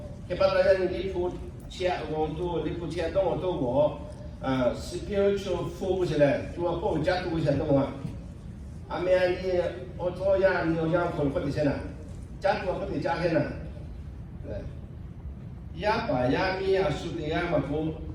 che parla di pu c'è un tu di pu c'è don tu mo spiritual focus le tu a po già tu sei no a me ani o to ya ni o ya ko ko di sena già tu ko di già che na ya pa ya mi a su de ya ma ko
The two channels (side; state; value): both; identical; correlation 1.00